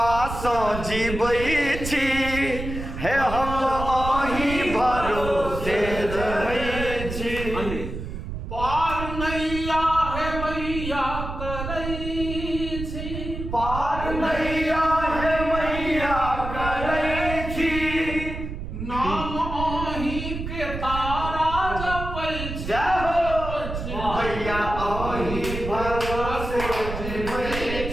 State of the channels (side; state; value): right; noise; rumble, 7 dB below the sound